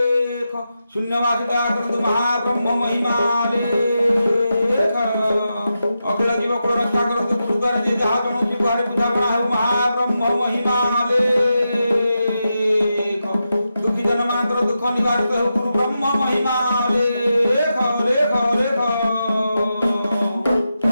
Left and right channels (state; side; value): inverted; both; correlation -0.88